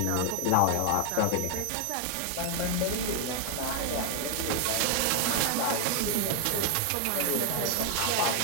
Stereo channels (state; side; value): different; both; correlation 0.00